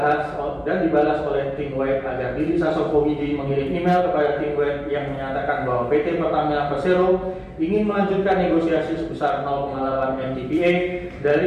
oleh tim WAD agar Dilip Sasongkowidi mengirim email kepada tim WAD yang menyatakan bahwa PT Pertamina Persero ingin melanjutkan negosiasi sebesar 0,8 MTPA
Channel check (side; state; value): both; identical; correlation 1.00